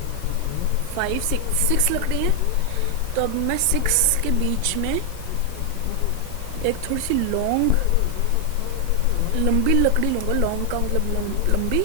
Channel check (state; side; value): different; both; correlation 0.00